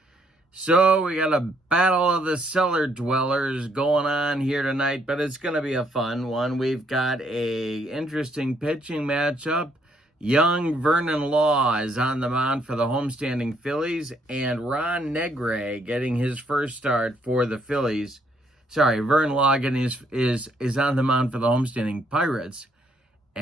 So we got a battle of the cellar dwellers going on here tonight, but it's going to be a fun one. We've got a interesting pitching matchup. Young Vernon Law is on the mound for the homestanding Phillies, and Ron Negray getting his first start for the Phillies. Vern Logan is on the mound for the homestanding Pirates,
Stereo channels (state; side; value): normal; both; correlation 0.70